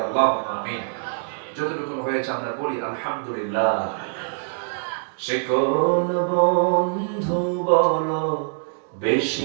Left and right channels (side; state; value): left; silent; digital silence